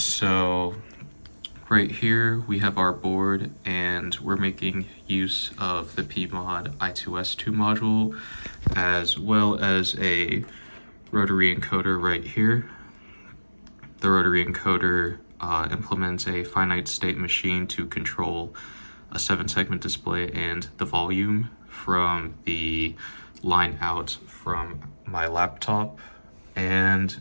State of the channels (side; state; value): both; inverted; correlation -1.00